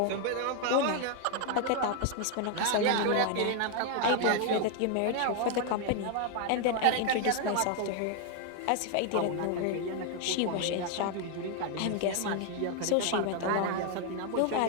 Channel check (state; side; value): different; both; correlation 0.00